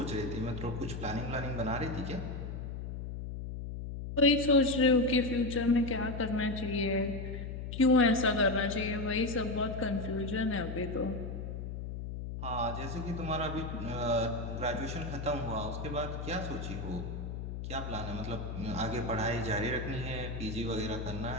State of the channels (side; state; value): left; noise; hum, 6 dB below the sound